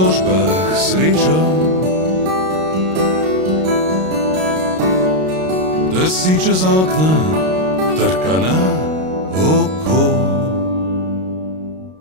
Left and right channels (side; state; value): left; late; 32 ms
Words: srečo, drsi čez okna, trka na oko.